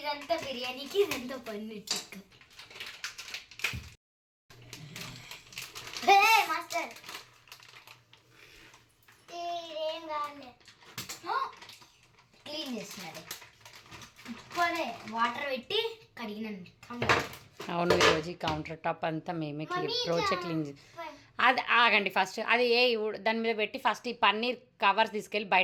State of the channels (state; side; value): identical; both; correlation 1.00